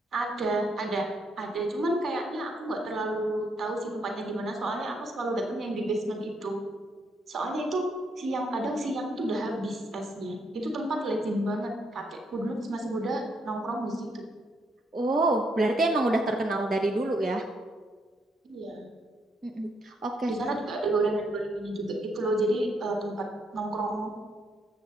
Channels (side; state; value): both; normal; correlation 0.74